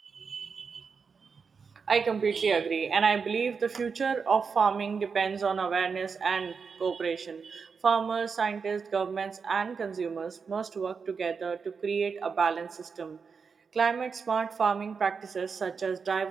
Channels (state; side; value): quieter; left; 5.5 dB